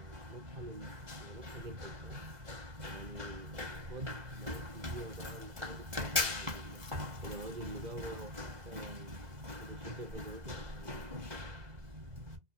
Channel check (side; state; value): left; late; 2.0 ms